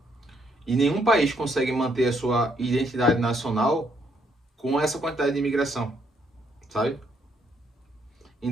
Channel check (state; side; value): normal; both; correlation 0.72